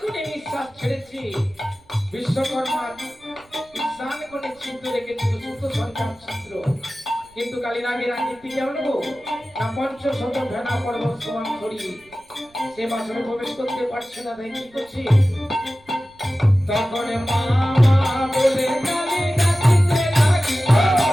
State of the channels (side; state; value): right; noise; rumble, 29 dB below the sound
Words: করে নিঃশ্বাস ছেড়েছি, বিশ্বকর্মা স্নান করে ছিদ্র রেখেছিল সুস্থ সন্তান ছিদ্র, কিন্তু কালীনাগের আকৃতি কেমন গো না পঞ্চশত ভেড়া পর্বত সমান করি সে বাসনে প্রবেশ করতে পারছে না। তাই কি করছি তখন মামা বলে কালী ডাকিতে লাগি,